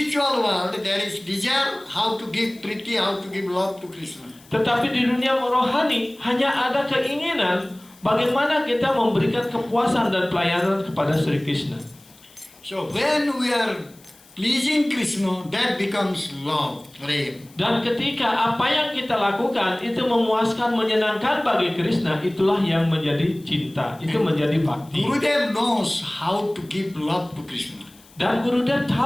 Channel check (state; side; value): noise; left; hiss, 26 dB below the sound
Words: world, there is desire how to give priti, how to give love to Krishna. Tetapi di dunia rohani hanya ada keinginan bagaimana kita memberikan kepuasan dan pelayanan kepada Sri Krishna. So when we are pleasing Krishna, that becomes love, prem. Dan ketika apa yang kita lakukan itu memuaskan, menyenangkan bagi Krishna, itulah yang menjadi cinta, itu menjadi bakti. Gurudev knows how to give love to Krishna. Dan Gurudev